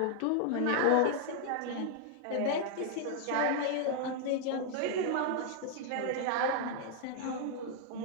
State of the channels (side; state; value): both; different; correlation 0.00